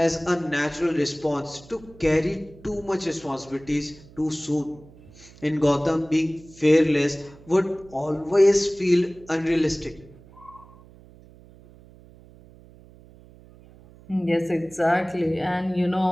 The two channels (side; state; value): right; noise; hum, 23 dB below the sound